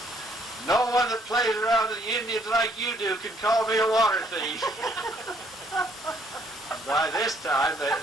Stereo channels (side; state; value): both; normal; correlation 0.66